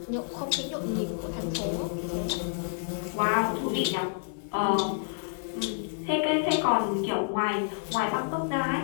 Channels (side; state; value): right; silent; digital silence